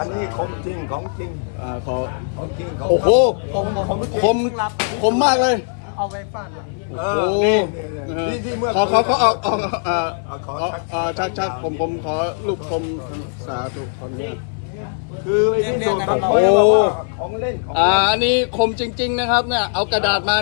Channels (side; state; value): right; silent; 60 dB below the other